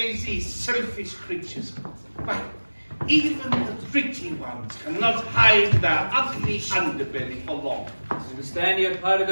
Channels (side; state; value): both; inverted; correlation -1.00